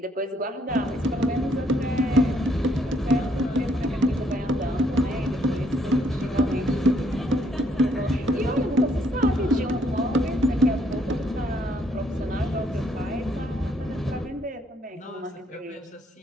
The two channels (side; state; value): both; normal; correlation 0.68